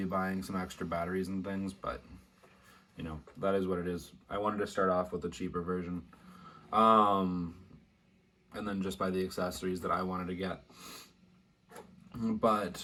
buying some extra batteries and things, but that is what it is. I wanted to start off with the cheaper version. And then just buy the accessories that I wanted to get.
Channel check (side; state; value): both; identical; correlation 1.00